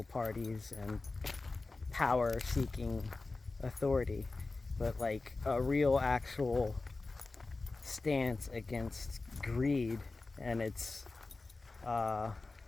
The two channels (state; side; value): quieter; right; 3.5 dB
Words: parties and power-seeking authority, but like a real actual stance against greed and its